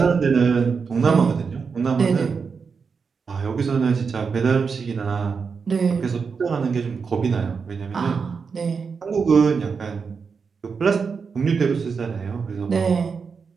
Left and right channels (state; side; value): quieter; left; 5.5 dB